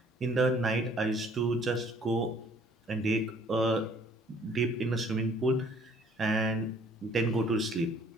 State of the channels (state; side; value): normal; both; correlation 0.58